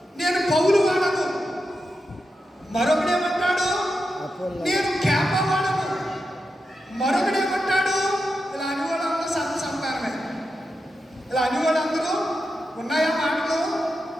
నేను పౌలు వాడను, మరొకడేమంటాడు నేను కేప వాడను, మరొకడేమంటాడు ఇలా అని వాళ్ళందరూ సంతానమే. ఇలా అని వాళ్ళందరూ ఉన్నాయా మాటలు?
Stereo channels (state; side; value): normal; both; correlation 0.88